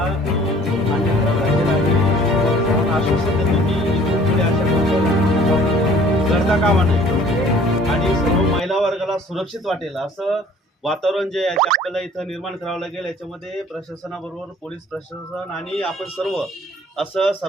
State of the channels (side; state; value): both; normal; correlation 0.53